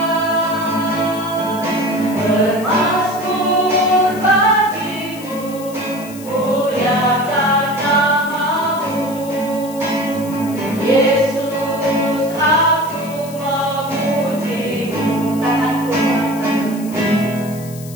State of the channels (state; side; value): noise; left; hiss, 17 dB below the sound